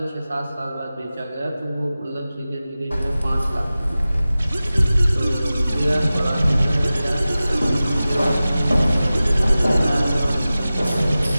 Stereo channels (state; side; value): inverted; both; correlation -0.96